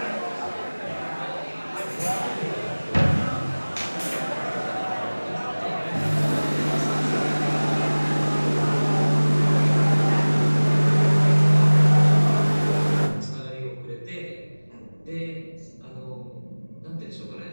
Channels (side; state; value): both; inverted; correlation -1.00